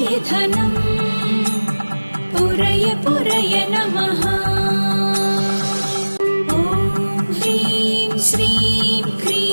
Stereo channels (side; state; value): both; inverted; correlation -1.00